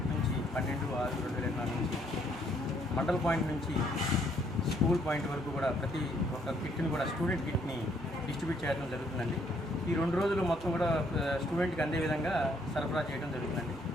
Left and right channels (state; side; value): normal; both; correlation 0.68